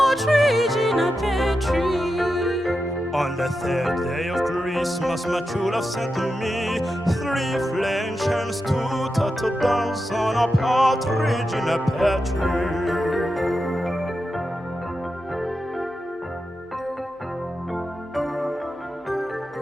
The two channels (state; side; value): normal; both; correlation 0.89